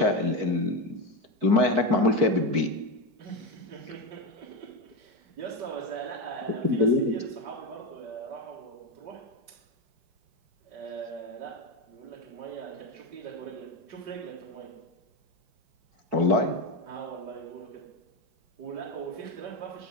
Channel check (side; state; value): left; late; 4.6 ms